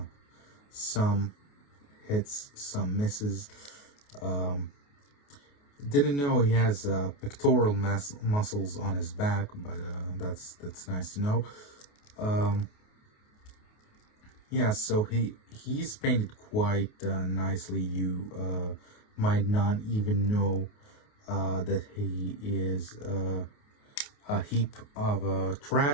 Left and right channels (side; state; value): right; late; 28 ms